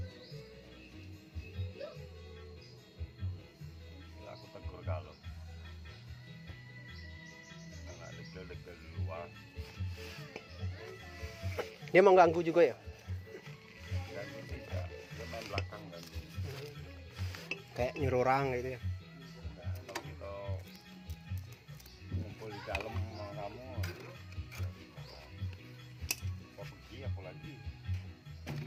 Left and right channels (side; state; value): both; identical; correlation 1.00